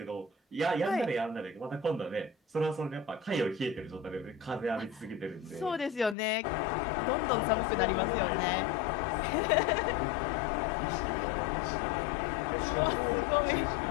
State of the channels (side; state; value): right; drops out; at 6.2 s